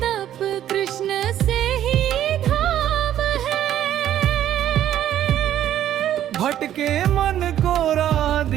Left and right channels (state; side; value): quieter; left; 11.4 dB